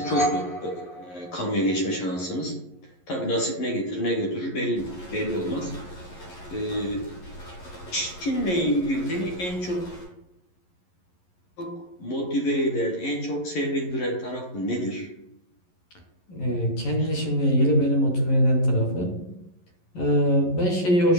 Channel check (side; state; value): right; late; 11 ms